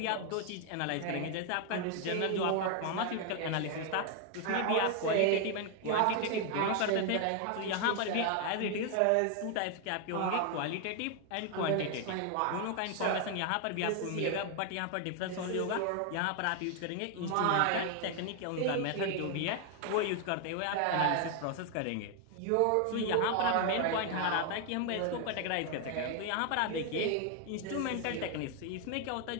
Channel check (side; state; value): both; different; correlation 0.00